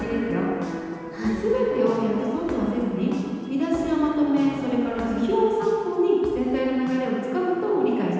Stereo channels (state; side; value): identical; both; correlation 1.00